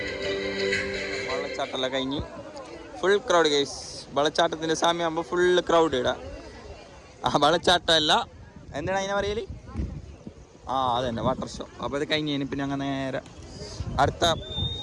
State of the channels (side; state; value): both; identical; correlation 1.00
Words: വെള്ളച്ചാട്ടമെല്ലാം കഴിഞ്ഞ് ഫുൾ ക്രൗഡ് ഗൈസ്. വെള്ളച്ചാട്ടത്തിൻ്റെ സമയമാകുമ്പോൾ ഫുള്ള് ക്രൗഡ് ഇടാം. ആ വെള്ളച്ചാട്ടമല്ല, എന്താണ് അതിനെ പറയല്? അതന്നെ വാട്ടർ ഷോ. അപ്പോൾ അത് കഴിഞ്ഞ് പിന്നെ അങ്ങനെ നേരെ അടുത്ത